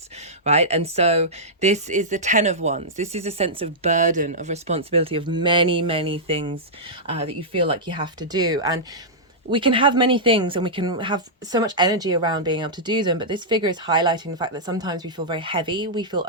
right? And so this is the 10 of Wands. This is a sense of burden, of responsibility, of many things that you feel like you have to do. And we can have many things and we can have so much energy around being able to do them, but this figure is highlighting the fact that sometimes we feel very heavy, we feel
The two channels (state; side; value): normal; both; correlation -0.11